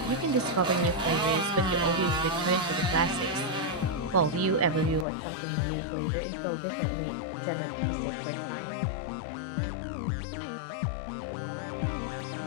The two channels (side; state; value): right; drops out; at 5.1 s